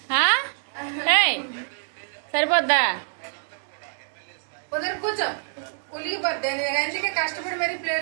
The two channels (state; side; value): silent; left; digital silence